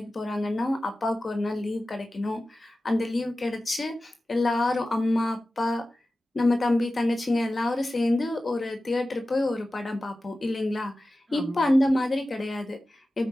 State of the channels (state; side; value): normal; both; correlation 0.95